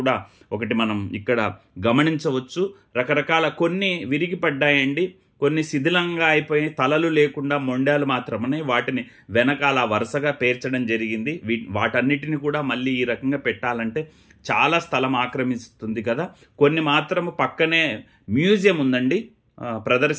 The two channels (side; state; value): both; identical; correlation 1.00